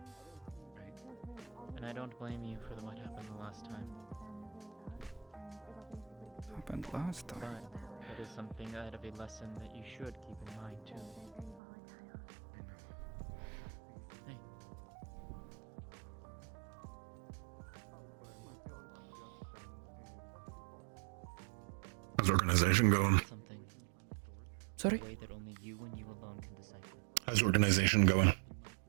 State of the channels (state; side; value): drops out; left; at 11.6 s